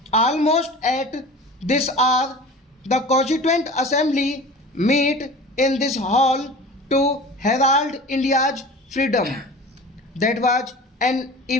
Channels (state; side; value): normal; both; correlation 0.38